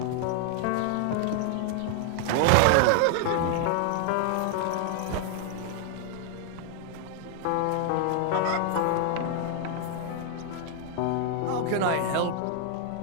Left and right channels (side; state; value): both; different; correlation 0.00